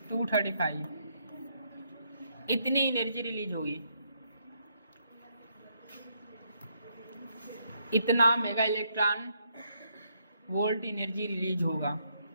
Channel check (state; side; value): inverted; both; correlation -0.73